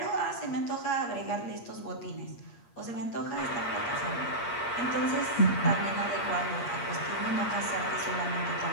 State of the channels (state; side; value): late; right; 8.5 ms